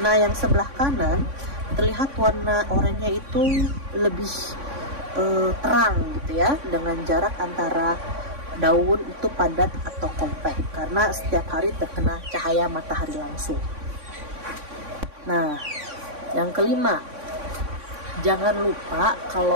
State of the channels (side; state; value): left; late; 3.6 ms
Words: Nah, yang sebelah kanan terlihat warna oranye itu lebih terang gitu ya, dengan jarak antara daun itu padat atau kompak karena setiap hari terkena cahaya matahari langsung. Nah, yang kelima, jangan lupa